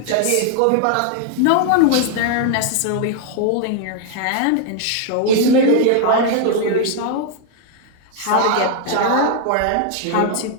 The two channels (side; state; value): both; different; correlation 0.00